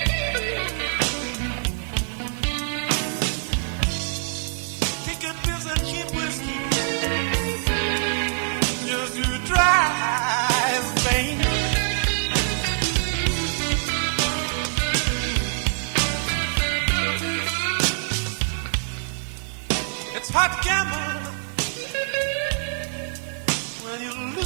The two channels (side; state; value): left; silent; 61 dB below the other